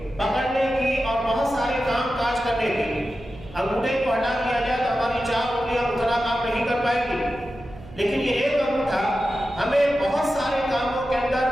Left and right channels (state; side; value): noise; right; hum, 18 dB below the sound